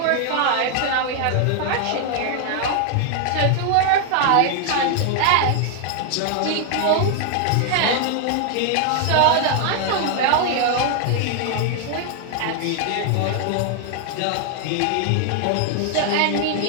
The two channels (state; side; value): different; both; correlation 0.00